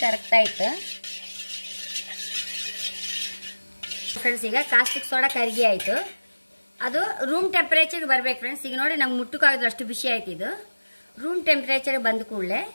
ಕರಗ್ತಾ ಇತ್ತು ಫ್ರೆಂಡ್ಸ್. ಈಗ ಕಾಸ್ಟಿಕ್ ಸೋಡಾ ಕರಗಿ ಆಯಿತು. ಅದು ರೂಮ್ ಟೆಂಪರೇಚರ್ಗೆ ಬರ್ಬೇಕು ಫ್ರೆಂಡ್ಸ್. ಈಗ ನೋಡಿ ನಮ್ಗೆ ಮುಟ್ಟಕ್ಕಾಗೋದು ಅಷ್ಟು ಬಿಸಿ ಆಯ್ತು. ಇದು ರೂಮ್ ಟೆಂಪರೇಚರ್ ಬಂದ ಕೂಡಲೇ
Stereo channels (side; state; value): both; inverted; correlation -1.00